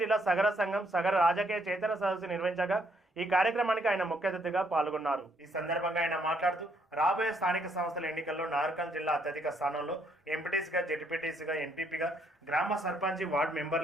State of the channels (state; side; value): normal; both; correlation 0.71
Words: జిల్లా సగర సంఘం సగర రాజకీయ చైతన్య సదస్సు నిర్వహించగా ఈ కార్యక్రమానికి ఆయన ముఖ్య అతిథిగా పాల్గొన్నారు. ఈ సందర్భంగా ఆయన మాట్లాడుతూ రాబోయే స్థానిక సంస్థల ఎన్నికల్లో నార్కల్ జిల్లా అత్యధిక స్థానంలో ఎంపీటీసీగా జెడ్పీటీసీగా ఎంపీపీగా గ్రామ సర్పంచ్ వార్డు